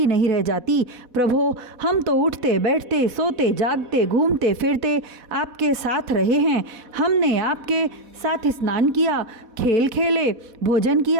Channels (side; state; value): left; late; 4.1 ms